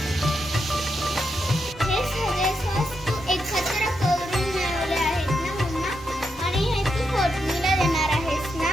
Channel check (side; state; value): both; normal; correlation 0.83